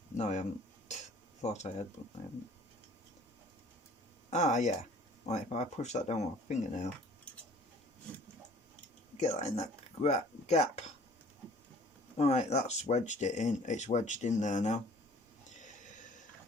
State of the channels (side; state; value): both; normal; correlation 0.52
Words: No, I haven't. Thought I had, but I haven't. Ah, yeah. Right, if I push that down with my fingernail, get that in that gap. Alright, that's wedged it in. It's wedged in there now.